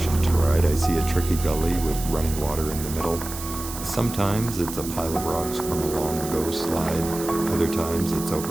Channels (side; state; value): right; noise; hiss, 10 dB below the sound